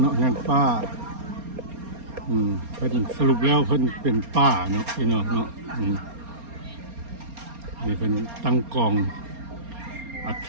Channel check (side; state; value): left; late; 4.3 ms